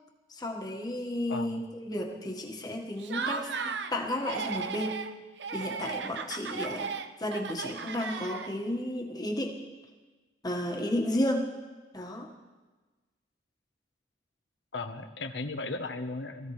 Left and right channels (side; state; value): both; normal; correlation 0.52